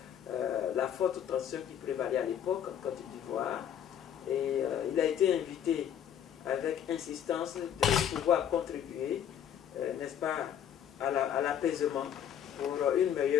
la forte tension qui prévalait à l'époque en Côte d'Ivoire. Et il a été invité avec insistance de pouvoir contribuer, n'est-ce pas, à l'apaisement pour une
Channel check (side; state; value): right; quieter; 9.4 dB